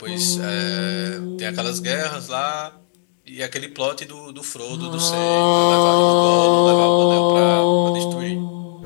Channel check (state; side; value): silent; right; digital silence